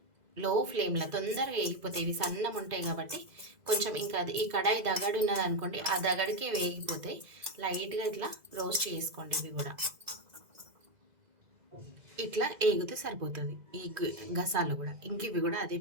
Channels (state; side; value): late; left; 2.0 ms